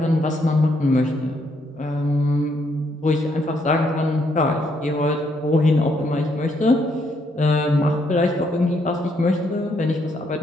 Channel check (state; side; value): normal; both; correlation 0.73